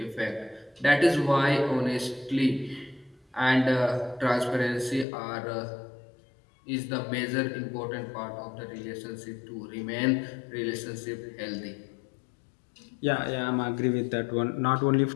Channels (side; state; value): right; drops out; at 5.1 s